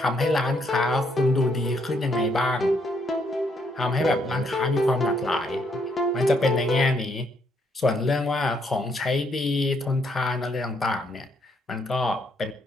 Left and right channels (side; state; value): both; normal; correlation 0.72